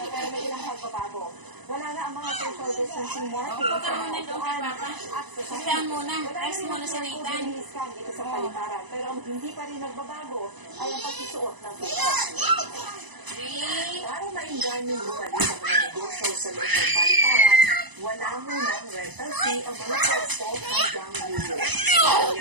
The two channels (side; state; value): left; late; 1.0 ms